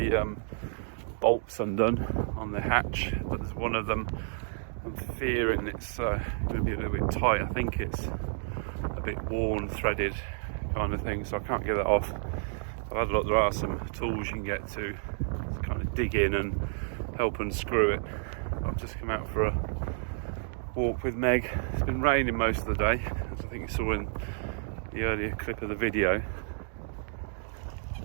bolts undone on the hatch, but there's one of them I'm fearing it's going to be a little bit tight. I think it's a bit worn, threaded kind of thing, so I can't get that off. I've had a look, there are some tools you can get to kind of dig in and help unscrew it. I've just come out for a walk with Meg. It's been raining most of the day, as I think you saw in the earlier clip of the video.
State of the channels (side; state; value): left; silent; digital silence